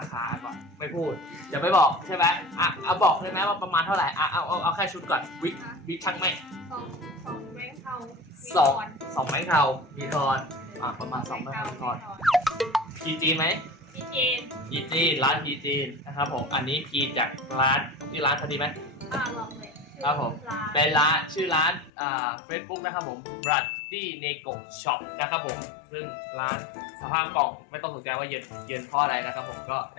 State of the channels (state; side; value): drops out; right; at 21.9 s